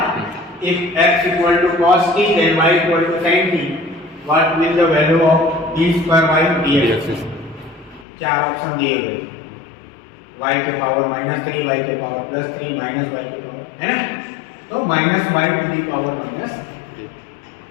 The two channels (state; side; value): drops out; right; at 8.1 s